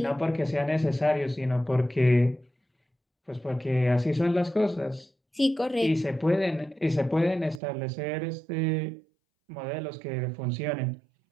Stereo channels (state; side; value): drops out; left; at 7.6 s